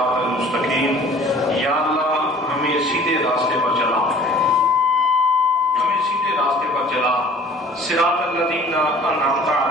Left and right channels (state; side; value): normal; both; correlation 0.49